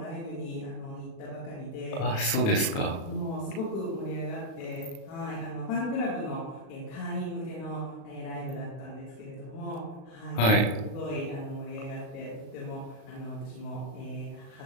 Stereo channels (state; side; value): late; right; 36 ms